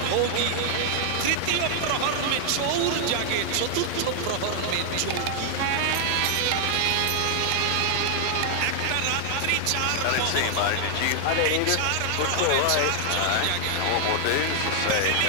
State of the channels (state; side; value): different; both; correlation 0.00